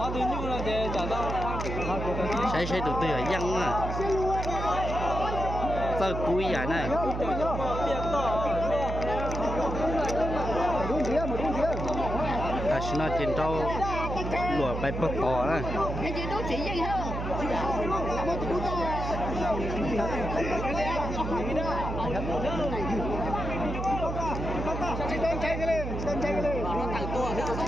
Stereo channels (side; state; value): right; noise; hum, 4 dB below the sound